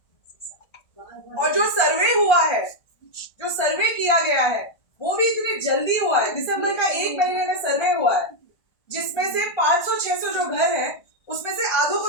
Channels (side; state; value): right; late; 1.3 ms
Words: और जो सर्वे हुआ है, जो सर्वे किया गया है, वो भी इतनी जल्दी हुआ है। दिसंबर का 1 महीने में सर्वे हुआ है, जिसमें से 500-600 जो घर है उसमें से आधों को